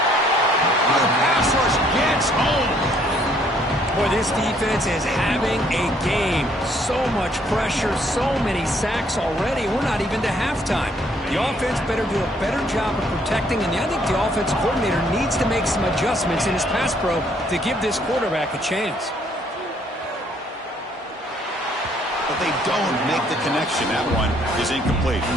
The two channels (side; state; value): both; normal; correlation 0.65